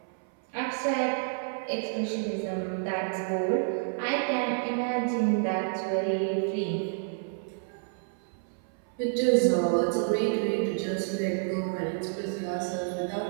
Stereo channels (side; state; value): left; silent; 58 dB below the other